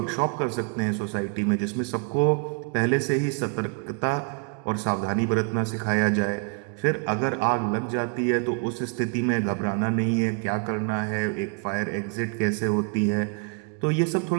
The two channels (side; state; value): left; quieter; 34.9 dB